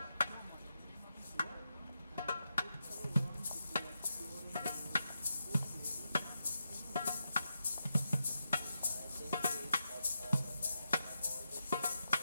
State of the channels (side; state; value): both; inverted; correlation -0.86